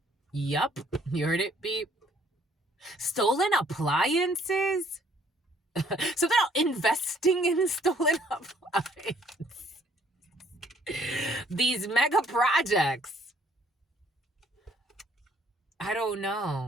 Yup, you heard it, beep. Stolen appliances? Something about investing in stolen appliances. These mega projects. I don't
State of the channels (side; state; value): both; normal; correlation 0.63